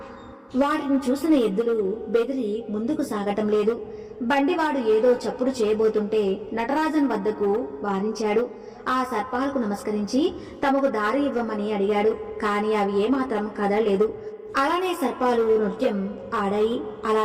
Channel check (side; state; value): both; identical; correlation 1.00